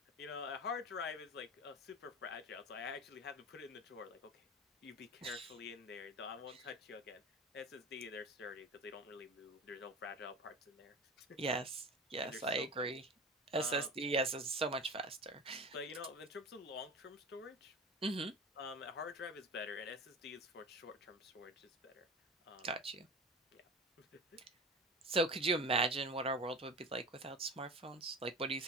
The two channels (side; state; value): both; normal; correlation 0.33